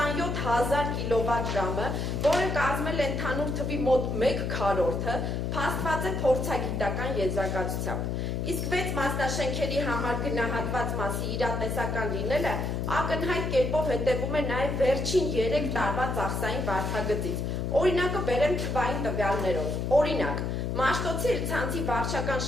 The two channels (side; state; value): left; noise; hum, 1 dB below the sound